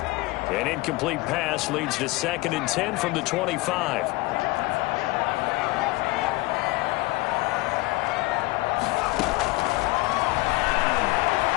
An incomplete pass leads to 2nd and 10 from the 25.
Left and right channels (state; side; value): quieter; right; 21.6 dB